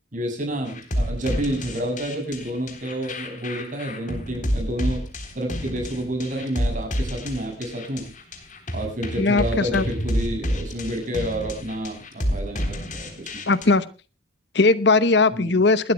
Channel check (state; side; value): normal; both; correlation 0.39